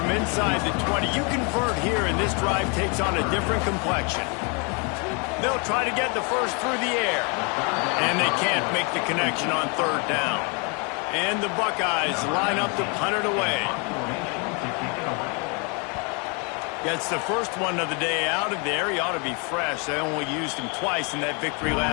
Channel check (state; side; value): quieter; right; 33.9 dB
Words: inside the 20. You convert here, and this drive takes on a different complexion. They'll try to get the first through the air. And they can't make the connection on 3rd down. And the Buckeyes line up to punt it away. Gets the first one of the day out of there. He ought to be fresh. They only used him twice in that victory